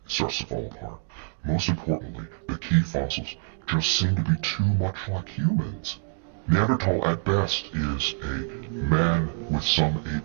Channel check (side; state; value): left; silent; 57 dB below the other